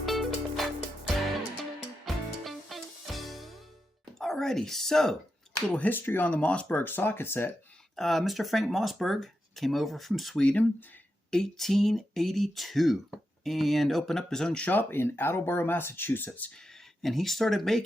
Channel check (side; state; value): both; normal; correlation 0.87